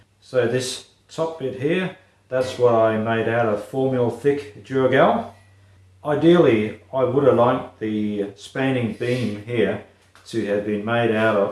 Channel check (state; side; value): identical; both; correlation 1.00